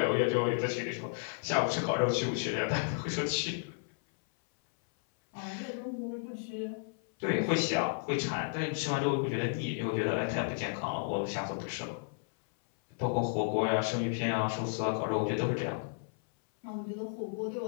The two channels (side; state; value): right; silent; 56 dB below the other